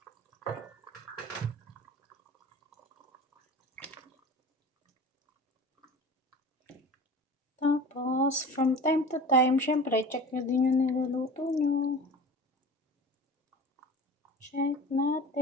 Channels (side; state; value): both; normal; correlation 0.37